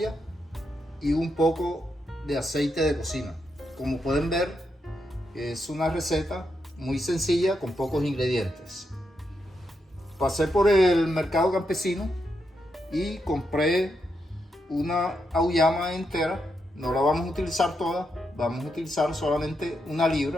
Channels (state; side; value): normal; both; correlation 0.83